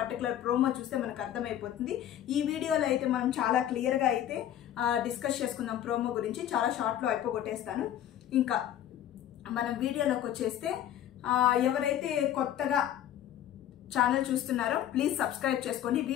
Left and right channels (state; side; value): quieter; right; 11.2 dB